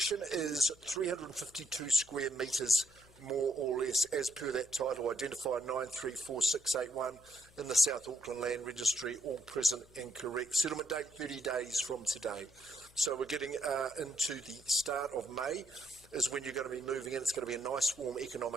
is 352 square metres, more or less, as per that title, identifier 934681 in the South Auckland Land Registry, all present and correct. Settlement date 30 days from today. So we're getting into the start of May is when you're going to be moving in. It's going to be a nice, warm,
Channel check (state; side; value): noise; left; hum, 25 dB below the sound